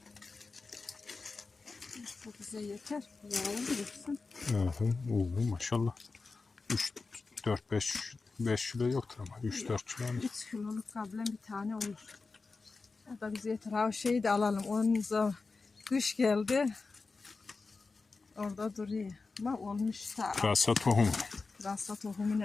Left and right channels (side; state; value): right; quieter; 4.1 dB